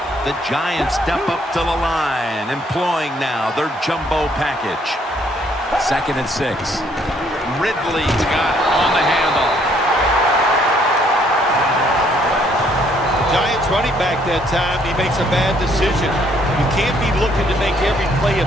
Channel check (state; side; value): normal; both; correlation 0.66